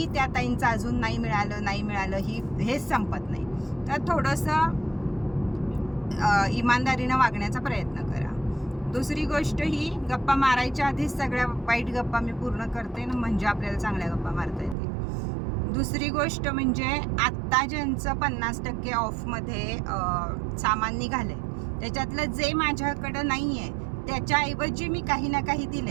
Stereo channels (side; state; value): left; drops out; at 14.8 s